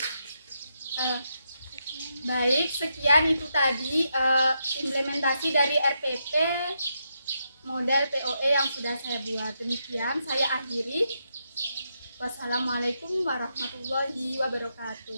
Baik, sekian itu tadi implementasi dari RPP model POE yang sudah saya buat. Demikian saya akhiri. Wassalamualaikum warahmatullahi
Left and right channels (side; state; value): both; inverted; correlation -0.82